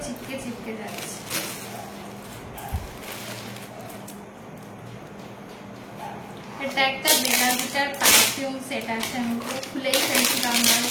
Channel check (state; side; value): identical; both; correlation 1.00